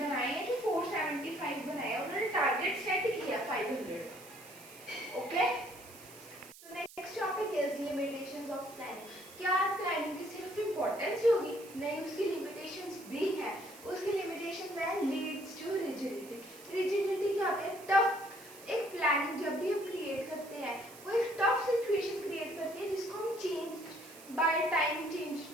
हैं कि 475 बनाए हैं, उन्होंने टारगेट सेट किया 500। ओके, तो next topic is limitations of planning. क्या प्लानिंग की सिर्फ इंपॉर्टेंस होगी? नहीं, उसकी लिमिटेशंस भी हैं। उसकी लिमिटेशन है लीड्स टू रिजिडिटी। रिजिडिटी क्या होता है? टफ। एक प्लानिंग जब भी हम क्रिएट करते हैं वो एक टफ सिचुएशन क्रिएट करती है जिसको हम चेंज बाय टाइम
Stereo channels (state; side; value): noise; right; hiss, 19 dB below the sound